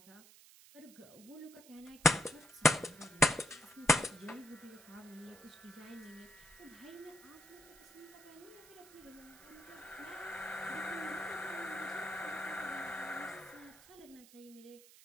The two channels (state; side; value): noise; right; hiss, 21 dB below the sound